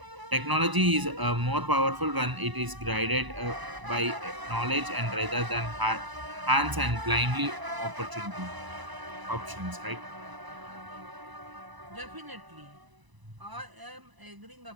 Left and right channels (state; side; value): late; left; 1.0 ms